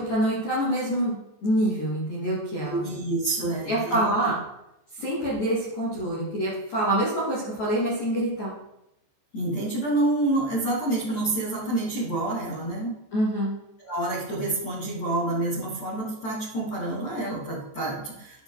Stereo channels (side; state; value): right; late; 14 ms